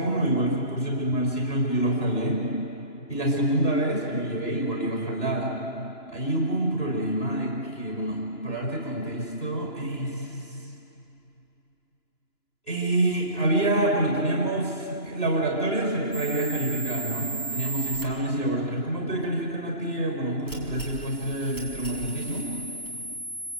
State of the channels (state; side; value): late; right; 2.9 ms